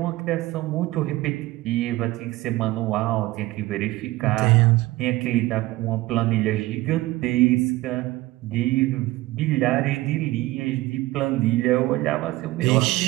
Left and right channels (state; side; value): quieter; left; 18.5 dB